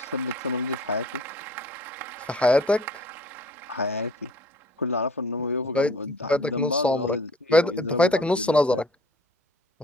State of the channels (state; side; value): normal; both; correlation 0.52